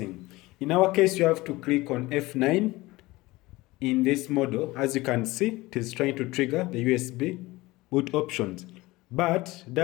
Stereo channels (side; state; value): right; quieter; 20.3 dB